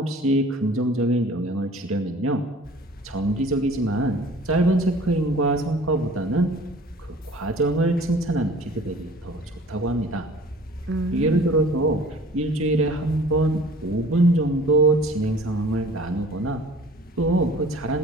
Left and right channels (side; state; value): both; normal; correlation 0.47